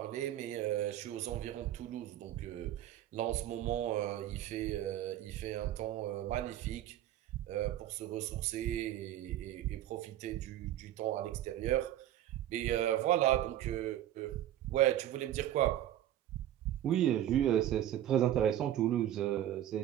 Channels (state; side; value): quieter; left; 12.3 dB